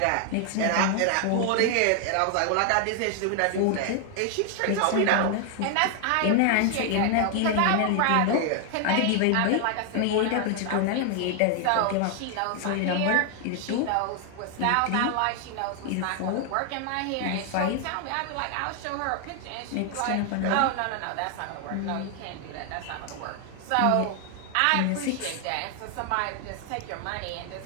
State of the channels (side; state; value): both; different; correlation 0.00